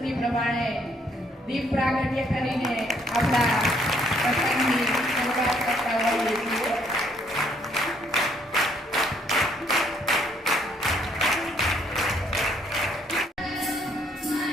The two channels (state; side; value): normal; both; correlation 0.67